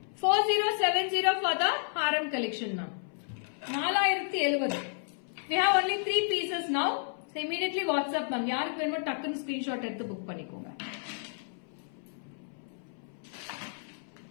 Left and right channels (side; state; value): right; silent; 57 dB below the other